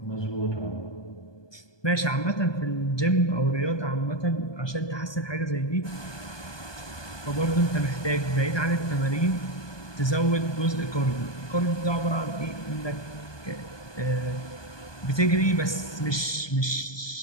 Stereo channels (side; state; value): right; late; 1.2 ms